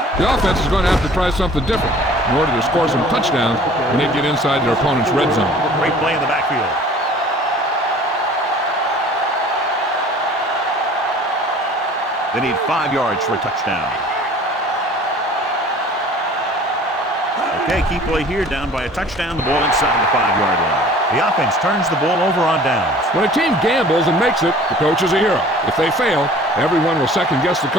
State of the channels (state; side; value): normal; both; correlation 0.48